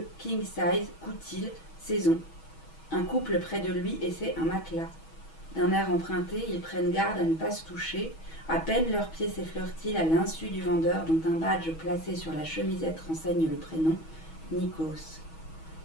king size, coutil, saison. Un couple près de lui essaie un matelas. D'un air emprunté, ils prennent garde à ne pas se toucher. À peine leurs pieds s'effleurent-ils à l'insu du vendeur dont un badge placé sur la chemisette renseigne le prénom, Nikos.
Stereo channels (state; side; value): late; right; 6.2 ms